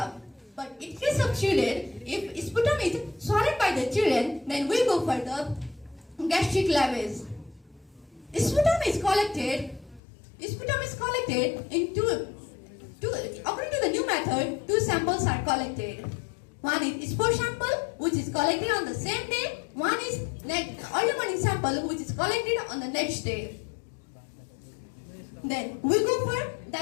But in case of children, if sputum is swallowed by the children, then we go for the gastric lavage. Sputum is collected in according to the new method, 2 samples are collected. One is spore sample, which is collected on the same day. One is early morning sample, which is collected on the next day. Then we go for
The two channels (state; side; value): drops out; right; at 10.0 s